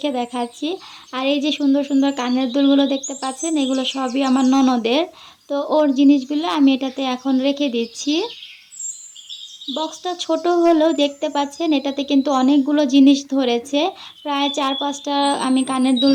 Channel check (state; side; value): identical; both; correlation 1.00